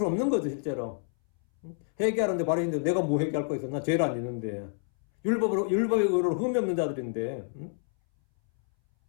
없는 거죠, 실제로. 회개하는데 바리새인들 내가 뭐 회개할 거 있어? 나 죄를 안 짓는데. 율법의 의로를 흠이 없는 자들인데.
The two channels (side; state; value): right; silent; 59 dB below the other